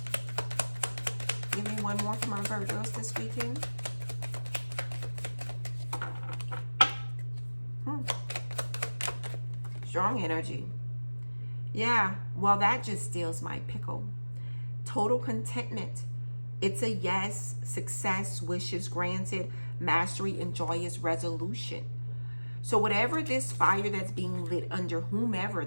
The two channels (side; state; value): both; inverted; correlation -1.00